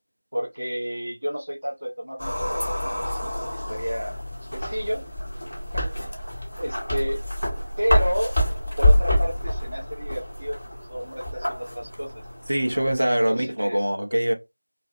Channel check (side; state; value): both; inverted; correlation -0.95